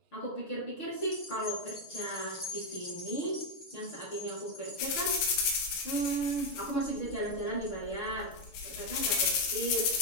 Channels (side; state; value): right; late; 7.2 ms